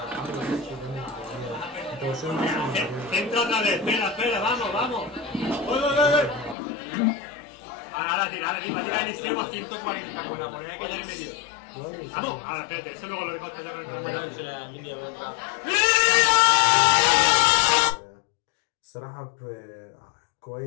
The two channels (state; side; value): drops out; right; at 6.6 s